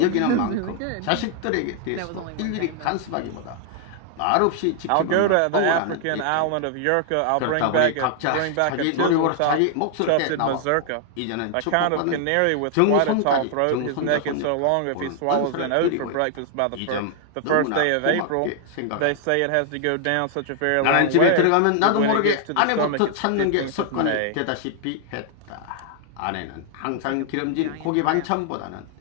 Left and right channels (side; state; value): both; different; correlation 0.00